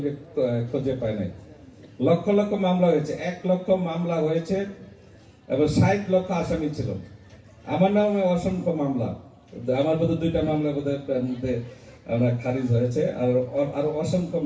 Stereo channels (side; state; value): both; identical; correlation 1.00